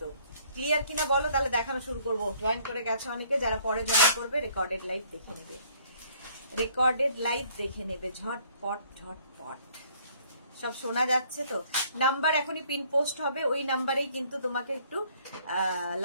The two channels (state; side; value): inverted; both; correlation -0.61